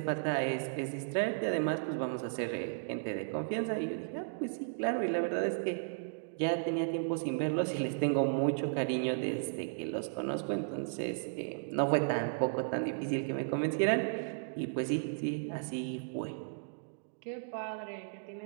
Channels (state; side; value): silent; left; digital silence